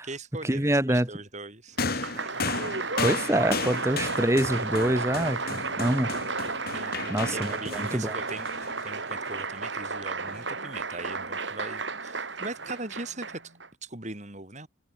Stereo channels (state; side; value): normal; both; correlation 0.45